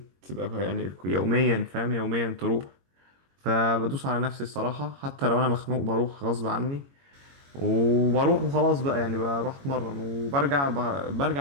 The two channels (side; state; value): left; late; 22 ms